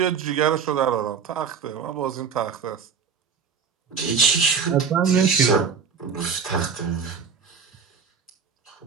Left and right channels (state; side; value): quieter; left; 6.3 dB